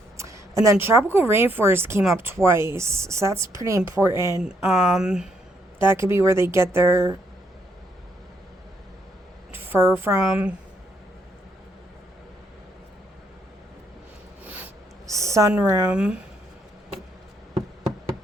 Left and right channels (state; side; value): normal; both; correlation 0.73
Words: And then tropical rainforest came up twice, so that's pretty important. That could be where they get their fur from. Sunroom.